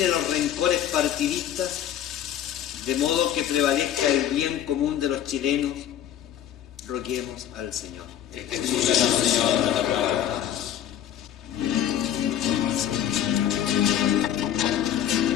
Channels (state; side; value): quieter; right; 10.6 dB